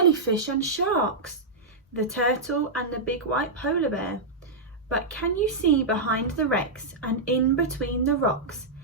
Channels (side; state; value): left; quieter; 3.2 dB